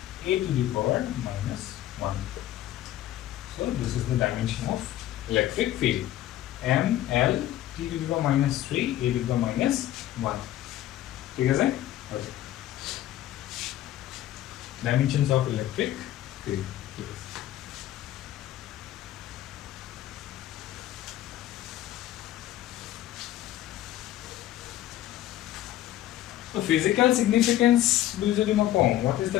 a to the power minus 1 so this is the dimension of electric field m l t to the power minus 3 a to the power minus 1 ঠিক আছে okay dimensions of electric field So physical significance what is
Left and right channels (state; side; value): quieter; right; 13.5 dB